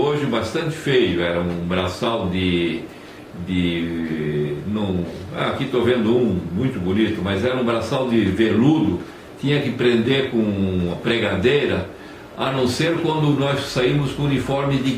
bastante feio. Era um braçal aqui estou vendo um muito bonito, mas era um braçal de veludo. Tinha que prender com a pregadeira, a não ser quando nós saímos com uniforme de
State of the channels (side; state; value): both; identical; correlation 1.00